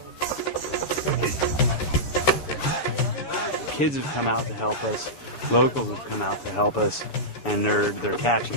Kids have come out to help us. Locals have come out to help us, and they're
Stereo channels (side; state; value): right; late; 7.0 ms